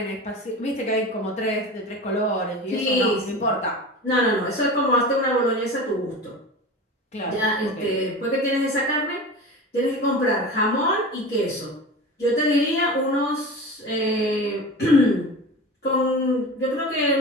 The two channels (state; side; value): normal; both; correlation 0.31